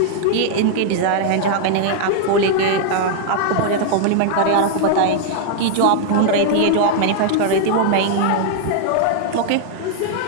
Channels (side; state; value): both; different; correlation -0.01